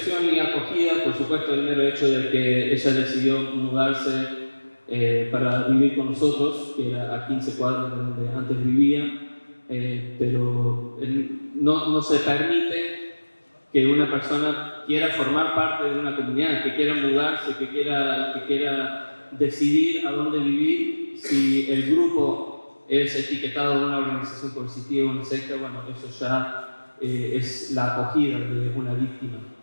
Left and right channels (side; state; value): both; inverted; correlation -1.00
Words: y acogida, por supuesto, el mero hecho de que ella decidió mudarse para vivir con nosotros, que era a 15 cuadras de donde antes vivía, pero no se permite que una persona quiera formar parte de una comunidad, que quiera mudarse, que quiera decidir a dónde vivir, si el grupo es etiquetado de una organización coercitiva o una secta. Bueno, eso ya es la acogida de una víctima.